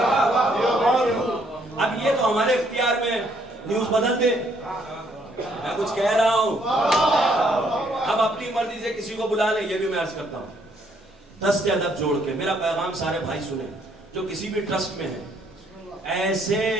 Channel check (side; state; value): both; normal; correlation 0.68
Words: اب یہ تو ہمارے اختیار میں نیوز بدل دے. میں کچھ کہہ رہا ہوں، اب اپنی مرضی سے کسی کو بلا لیں. یہ بھی میں عرض کرتا ہوں دست ادب جوڑ کے میرا پیغام سارے بھائی سنیں جو کسی بھی ٹرسٹ میں ہیں. ایسے